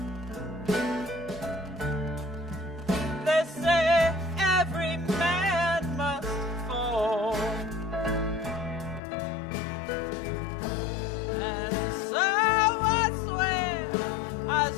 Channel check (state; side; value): drops out; right; at 9.0 s